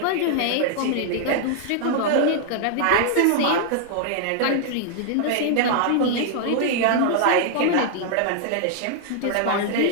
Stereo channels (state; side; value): different; both; correlation 0.00